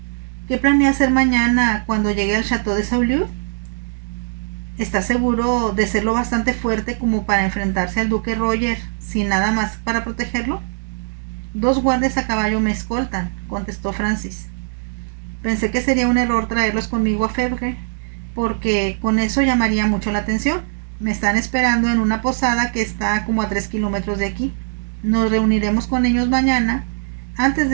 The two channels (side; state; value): left; silent; 66 dB below the other